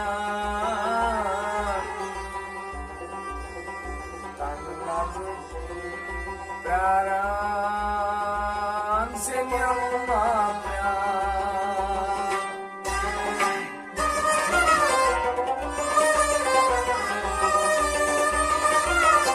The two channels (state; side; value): identical; both; correlation 1.00